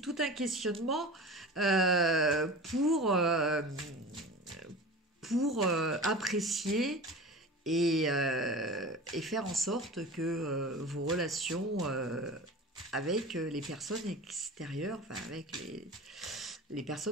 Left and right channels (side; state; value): both; normal; correlation 0.34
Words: un questionnement euh, pour euh, pour apprécier et faire en sorte que vos relations avec les personnes extérieures, enfin avec les